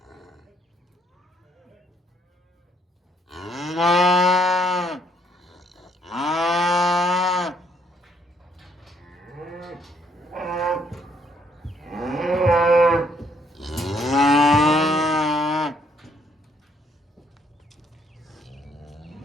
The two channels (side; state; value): both; normal; correlation 0.68